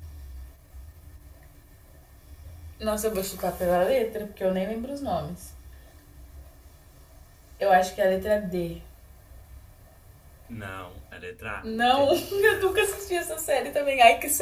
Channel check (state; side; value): identical; both; correlation 1.00